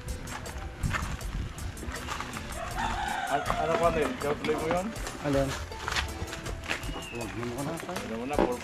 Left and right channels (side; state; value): both; identical; correlation 1.00